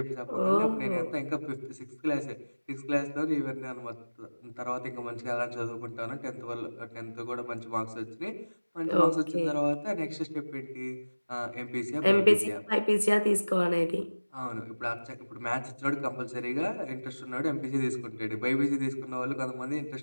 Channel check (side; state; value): both; inverted; correlation -1.00